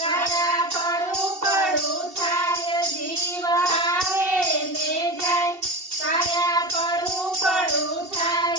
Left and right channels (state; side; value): late; left; 2.7 ms